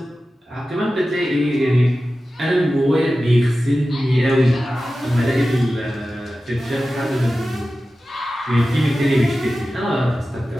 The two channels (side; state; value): both; normal; correlation 0.94